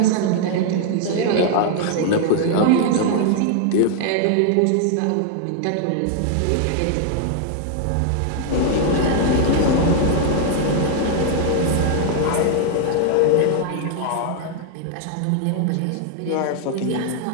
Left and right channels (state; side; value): different; both; correlation 0.00